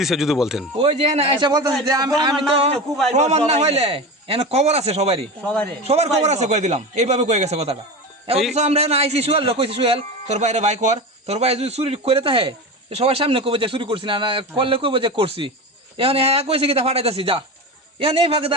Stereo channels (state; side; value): normal; both; correlation 0.25